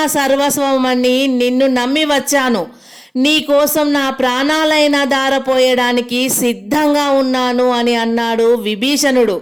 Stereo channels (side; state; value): both; identical; correlation 1.00